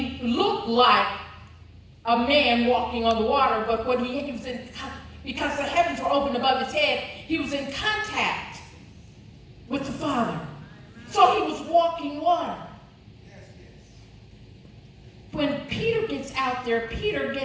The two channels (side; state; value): both; identical; correlation 1.00